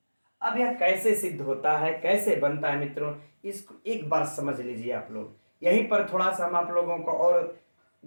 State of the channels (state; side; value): inverted; both; correlation -1.00